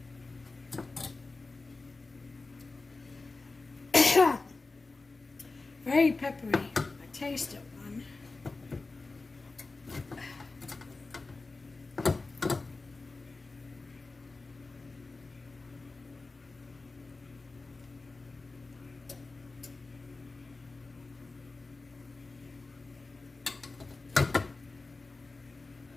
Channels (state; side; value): quieter; right; 3.6 dB